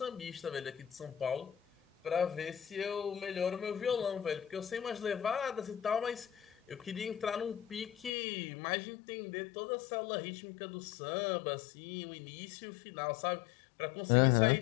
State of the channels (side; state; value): right; drops out; at 8.1 s